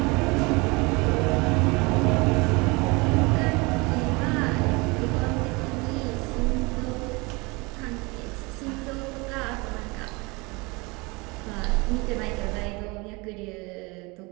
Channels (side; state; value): left; quieter; 26.4 dB